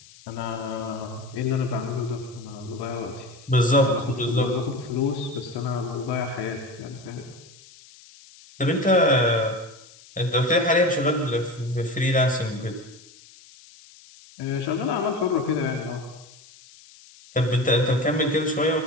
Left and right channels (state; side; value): noise; left; hiss, 23 dB below the sound